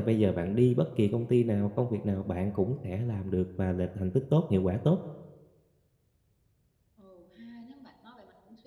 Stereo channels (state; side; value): identical; both; correlation 1.00